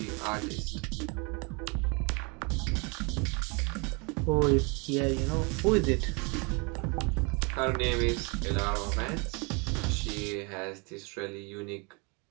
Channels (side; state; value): left; quieter; 30.9 dB